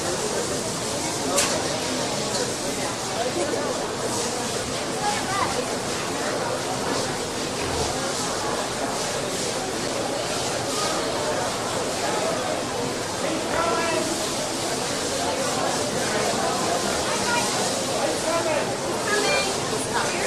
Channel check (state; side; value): identical; both; correlation 1.00